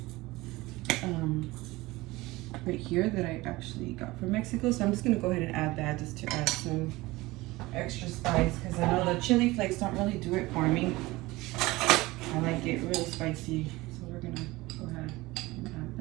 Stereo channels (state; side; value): quieter; left; 20.3 dB